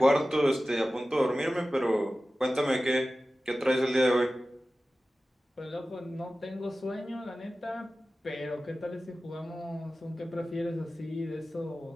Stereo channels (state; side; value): normal; both; correlation 0.95